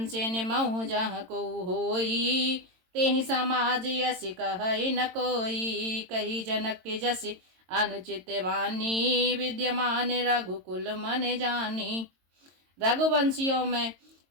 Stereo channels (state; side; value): late; left; 22 ms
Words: से निमहु जहाँ को होई, तेहि समाज यस कहि न कोई। कही जनक के जस अनुचित वाणी, विद्यमान रघुकुल मन जानी। रघुवंशियों में